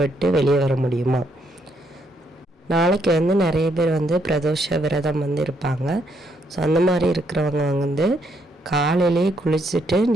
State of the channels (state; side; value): normal; both; correlation 0.74